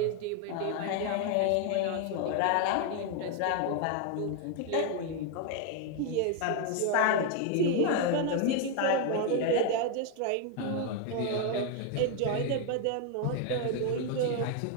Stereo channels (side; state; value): both; different; correlation 0.01